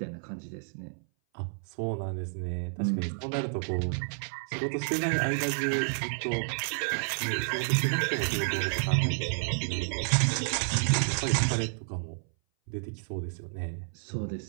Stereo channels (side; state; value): left; silent; 57 dB below the other